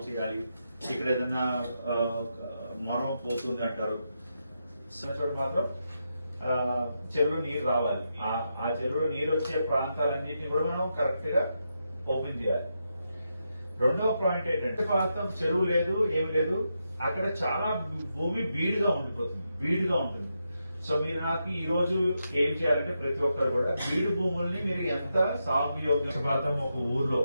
చేయాలి, ఇక్కడ ఏదైనా మొరం పోతుంది అంటారు, మాత్రం చెరువులో నీరు రావాలి. ఆ చెరువులో నీరు వచ్చే ప్రాంతాలన్నింటినీ కూడా మనం కరెక్ట్ గా ఓపెన్ చేయాలి. రెండవ పాయింట్ ఏంటంటే, ప్రాంతం చెరువు లేదు, ఏమి లేదు, అక్కడ చాలా భూమి బీడుగా ఉంటుంది. సో మీరు నాకు ఈ రోజు ఏం చేయాలంటే, ప్రతి ఒక్కరు కూడా బీడు భూముల్ని మీరు ఎంత సాగు యోగ్యం, ఒక ఊర్లో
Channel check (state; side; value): inverted; both; correlation -0.85